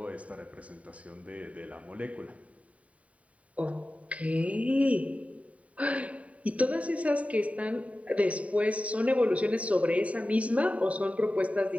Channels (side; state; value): left; late; 0.067 ms